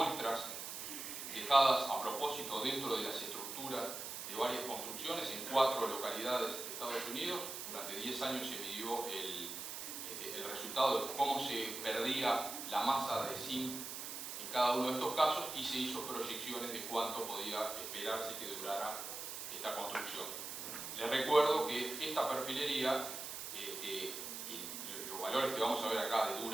dejadas a propósito dentro de las estructuras de varias construcciones en 4 localidades de Estados Unidos, durante 10 años se midió el resultado de cómo se perdía la masa de zinc en cada uno de estos casos y se hizo proyecciones de cuánto podía esperarse que durara esta construcción. Les recuerdo que esta perfilería, los valores que vamos a ver acá de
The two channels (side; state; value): right; noise; hiss, 7 dB below the sound